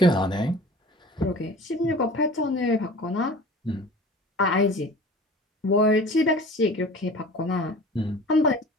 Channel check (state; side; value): normal; both; correlation 0.42